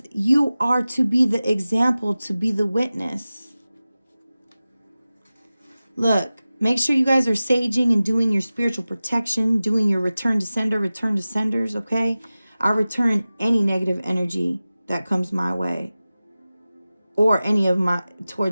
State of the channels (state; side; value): inverted; both; correlation -0.96